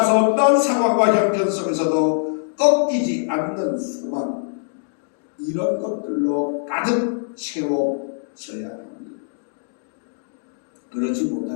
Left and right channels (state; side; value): silent; right; digital silence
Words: 어떤 상황과 형편 속에서도 꺾이지 않는 소망, 이런 것들로 가득 채워져야 합니다. 그렇지